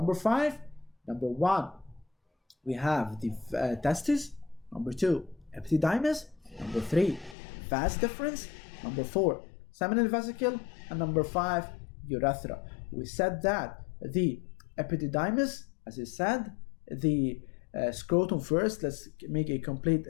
5. Number 1, we have the testes. Number 2, epididymis. Number 3, vas deferens. Number 4, seminal vesicle. And number 5, urethra. We said that the epididymis, as I said, the scrotum first. Let's make a complete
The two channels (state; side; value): drops out; right; at 7.4 s